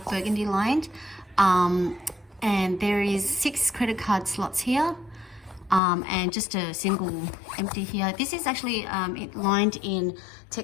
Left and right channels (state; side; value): drops out; right; at 5.8 s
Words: burgundy lined, and there is 6 credit card slots here, and just a single empty here. This is actually it lined in